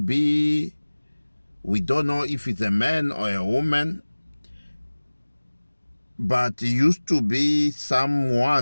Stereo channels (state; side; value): inverted; both; correlation -1.00